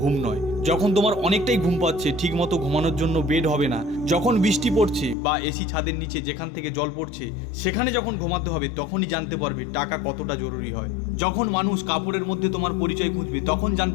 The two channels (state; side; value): drops out; right; at 5.2 s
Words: নয়। যখন তোমার অনেকটাই ঘুম পাচ্ছে, ঠিকমতো ঘুমানোর জন্য বেড হবে না, যখন বৃষ্টি পড়ছে বা এসি ছাদের নিচে যেখান থেকে জল পড়ছে সেখানে যখন ঘুমাতে হবে, তখনই জানতে পারবে টাকা কতটা জরুরি হয়। যখন মানুষ কাপড়ের মধ্যে তোমার পরিচয় খুঁজবে, তখন